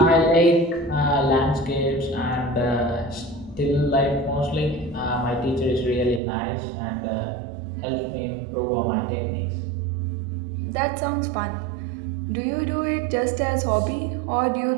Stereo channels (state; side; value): drops out; left; at 6.2 s